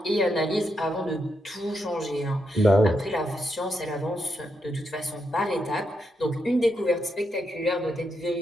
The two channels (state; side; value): normal; both; correlation 0.82